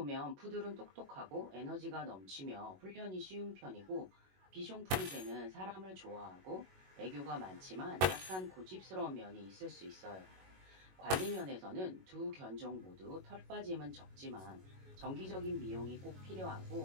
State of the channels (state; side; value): late; left; 21 ms